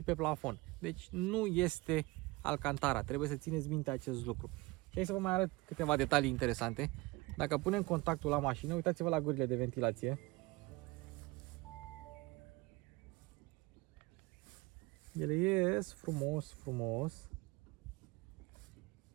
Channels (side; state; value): left; quieter; 22.8 dB